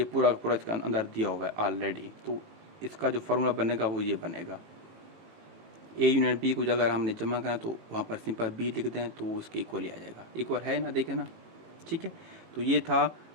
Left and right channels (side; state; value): left; late; 18 ms